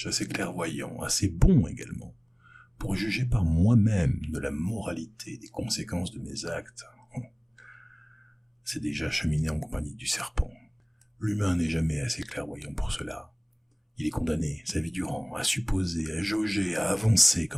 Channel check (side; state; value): both; identical; correlation 1.00